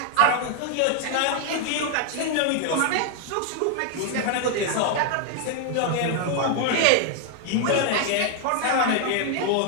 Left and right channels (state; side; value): different; both; correlation 0.00